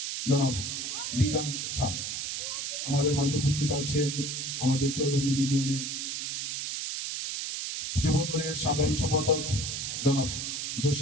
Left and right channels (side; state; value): right; noise; hiss, 3 dB below the sound